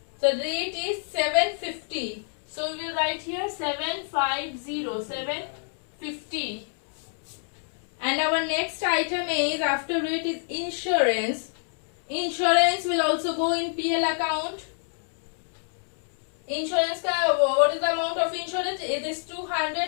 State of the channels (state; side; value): silent; right; 60 dB below the other